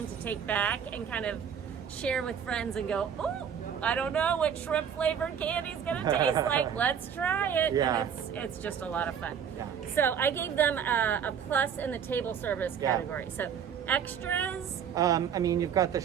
to take back and kind of share with friends and go, oh, I don't know what shrimp flavored candy is going to taste like. Let's try it. Yeah. And it's just a lot of fun. Yeah. So I gave them a plus in the table service category. So extras. I mean, you've got the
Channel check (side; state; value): left; quieter; 7.9 dB